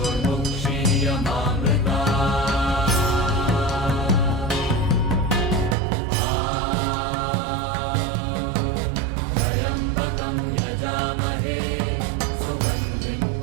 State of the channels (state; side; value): drops out; left; at 5.8 s